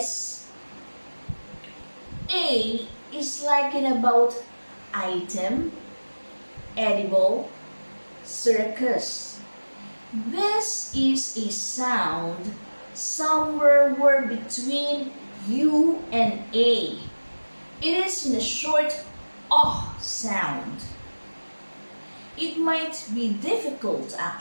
A is like in about item, edible, circus. This is a sound somewhere between U and A. It is in a short sound. It might be difficult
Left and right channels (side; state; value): both; inverted; correlation -1.00